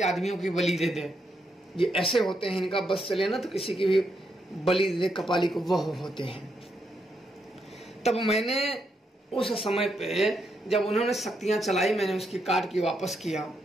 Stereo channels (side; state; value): both; normal; correlation 0.80